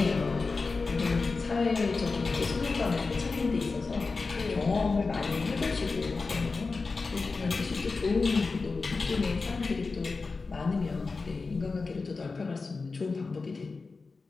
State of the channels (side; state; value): right; quieter; 4.1 dB